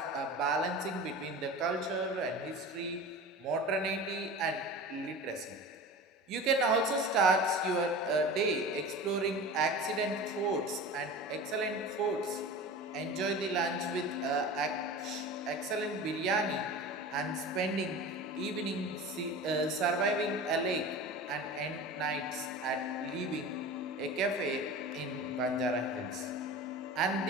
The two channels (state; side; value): normal; both; correlation 0.34